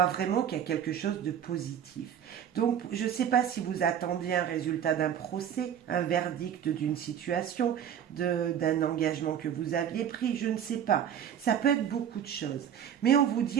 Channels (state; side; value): quieter; left; 9.2 dB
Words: vraiment qu'il y a quelque chose de positif. Donc, je ne sais pas si vous attendiez un résultat d'un procès, un verdict d'une situation, d'un engagement que vous aviez pris, je ne sais pas. Ça peut être beaucoup de choses. Mais on vous